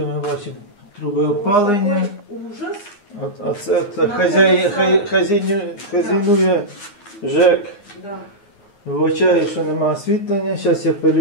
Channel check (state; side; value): late; right; 9.7 ms